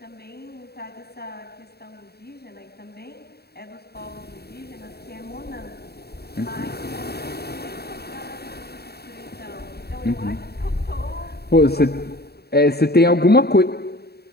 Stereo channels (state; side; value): late; right; 0.47 ms